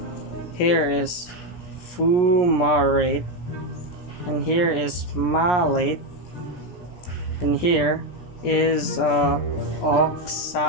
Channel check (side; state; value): right; late; 17 ms